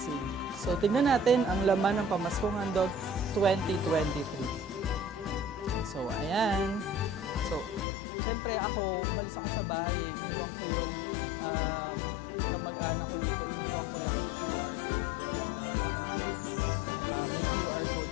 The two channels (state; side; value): drops out; right; at 7.9 s